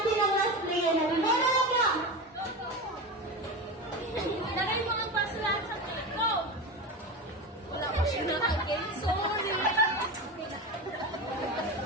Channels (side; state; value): both; normal; correlation 0.23